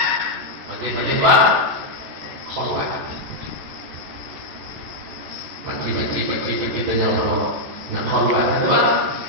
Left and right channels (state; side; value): late; left; 14 ms